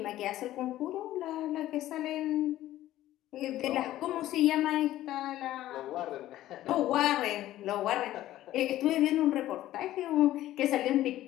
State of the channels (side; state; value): right; quieter; 14.3 dB